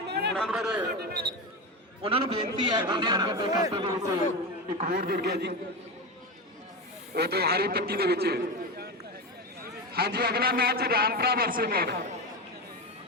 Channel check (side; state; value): both; normal; correlation 0.18